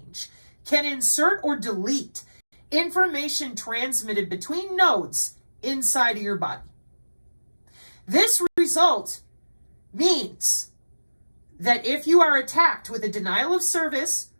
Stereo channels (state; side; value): inverted; both; correlation -1.00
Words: can insert or delete information transmitted between nodes inside of your body. This result means that if you are attacked with a denial of service